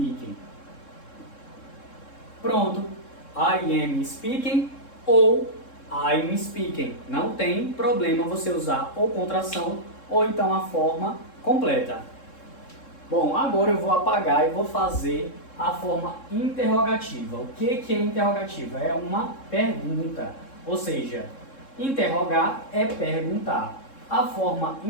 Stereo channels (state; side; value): late; right; 3.7 ms